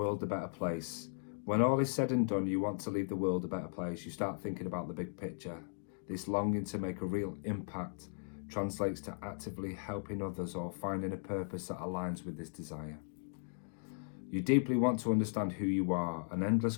a better place. When all is said and done, you want to leave the world a better place. You start thinking about the big picture. This longing to make a real impact translates to actively helping others or finding a purpose that aligns with this desire. You deeply want to understand who you are, and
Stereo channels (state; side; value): silent; right; digital silence